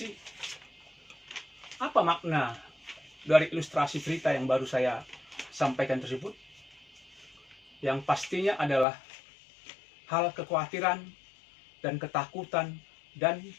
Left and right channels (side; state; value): right; drops out; at 8.8 s